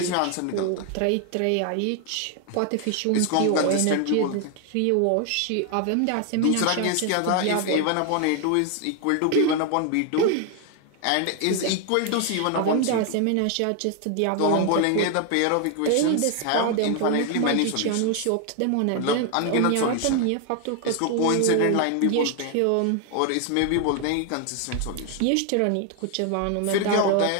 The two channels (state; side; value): different; both; correlation 0.01